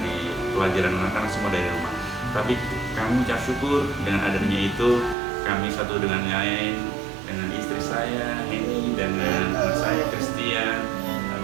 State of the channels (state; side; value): drops out; left; at 5.2 s